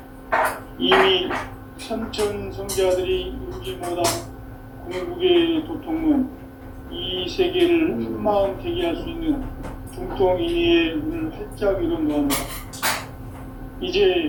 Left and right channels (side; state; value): both; identical; correlation 1.00